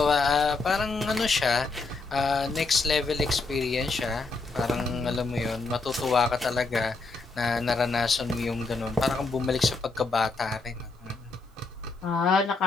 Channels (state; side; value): quieter; right; 3.8 dB